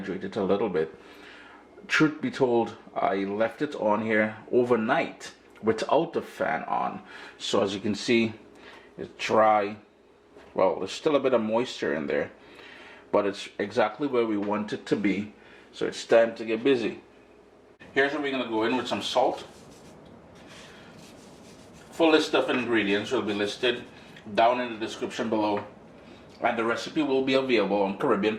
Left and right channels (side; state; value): both; identical; correlation 1.00